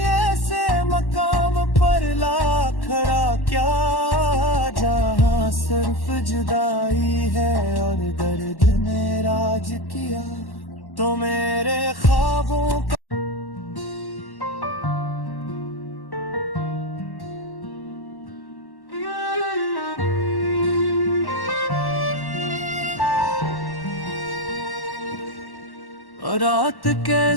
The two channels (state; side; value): late; right; 1.1 ms